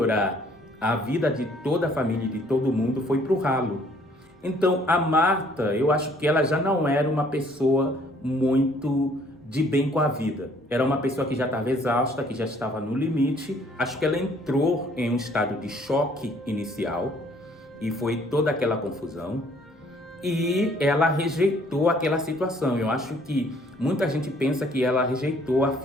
a vida de toda a família e de todo mundo foi para o ralo. Então, a Marta, eu acho que ela já não era uma pessoa muito de bem com a vida. Era uma pessoa que já estava exausta, que já estava no limite. Acho que ela entrou em um estado de choque inicial e foi toda aquela confusão. E ela rejeitou aquela situação. Eu acho que muita gente pensa que ela rejeitou a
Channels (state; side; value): normal; both; correlation 0.61